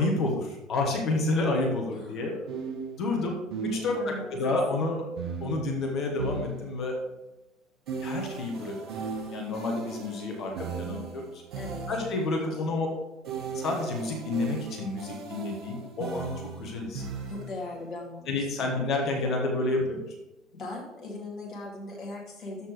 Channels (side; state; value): both; normal; correlation 0.38